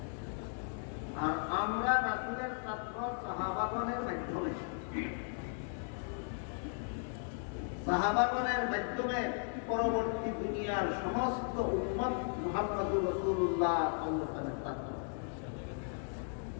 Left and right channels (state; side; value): silent; right; 54 dB below the other